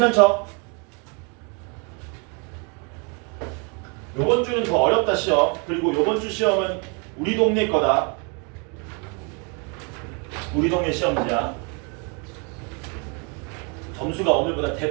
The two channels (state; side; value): quieter; left; 34.5 dB